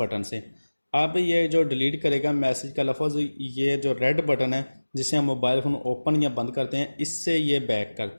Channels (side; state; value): both; inverted; correlation -1.00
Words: से। अब ये जो डिलीट करेगा मैसेज का लफ्ज़, ये जो रेड बटन है जिसे हम मोबाइल फ़ोन ओपन या बंद करते हैं, इससे ये बैक